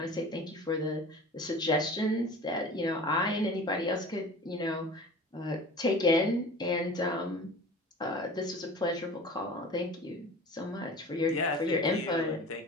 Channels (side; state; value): both; normal; correlation 0.39